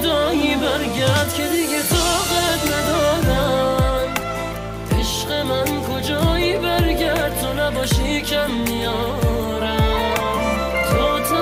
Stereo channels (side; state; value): both; identical; correlation 1.00